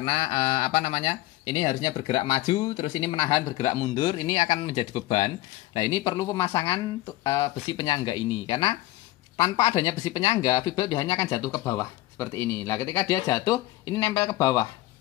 ini harusnya bergerak maju, terus ini menahan bergerak mundur, ini akan menjadi beban. Nah ini perlu pemasangan besi penyangga ini karena tanpa adanya besi penyangga, V-belt biasanya akan jatuh ke bawah seperti ini. Nah, ketika dia jatuh, ini nempel ke bawah.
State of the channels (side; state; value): right; quieter; 17.1 dB